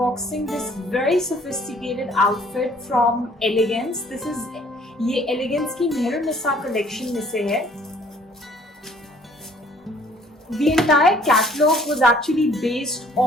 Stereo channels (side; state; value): both; normal; correlation 0.58